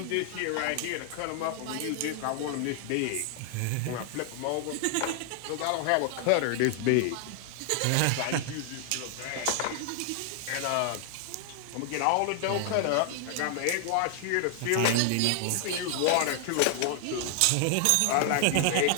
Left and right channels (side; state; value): both; different; correlation 0.00